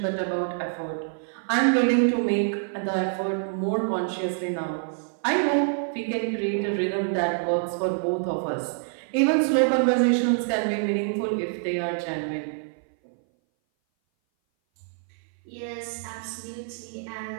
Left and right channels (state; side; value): silent; left; 58 dB below the other